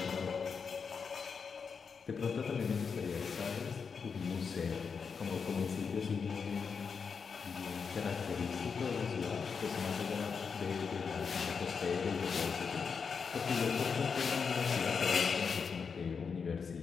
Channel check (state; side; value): quieter; right; 5.8 dB